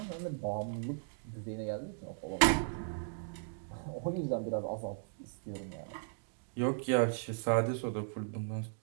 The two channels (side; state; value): left; silent; digital silence